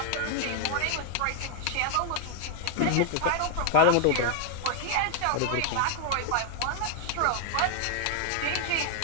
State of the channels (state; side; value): different; both; correlation 0.00